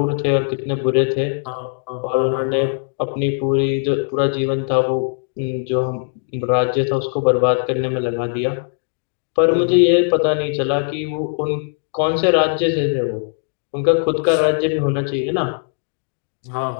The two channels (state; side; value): silent; right; digital silence